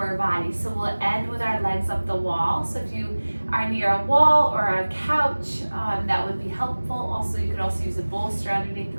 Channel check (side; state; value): both; inverted; correlation -1.00